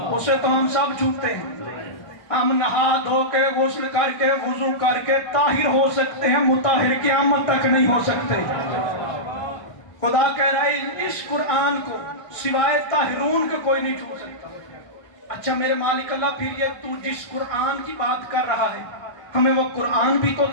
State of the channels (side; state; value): right; late; 1.4 ms